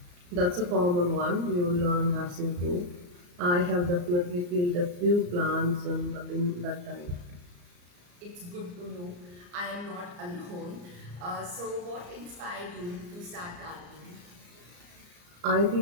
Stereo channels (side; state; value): left; late; 34 ms